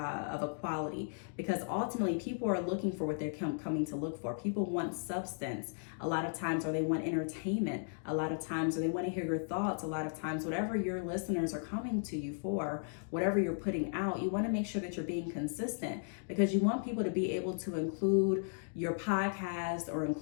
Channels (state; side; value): silent; right; digital silence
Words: a quality, because ultimately people are looking for what they're coming to look for. People want substance a lot of times, or they want entertainment a lot of times, or they want to hear your thoughts a lot of times. Whatever your listeners are coming to you for, whatever you're putting out, you want to make sure that you're being consistent, because you want people to be able to include your podcast or